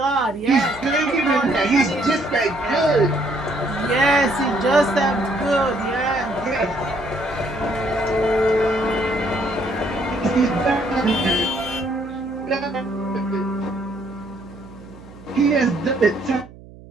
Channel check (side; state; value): right; noise; hum, 20 dB below the sound